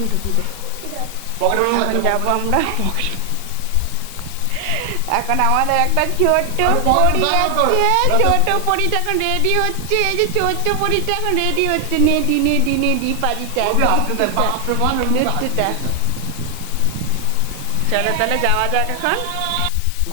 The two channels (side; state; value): both; different; correlation 0.00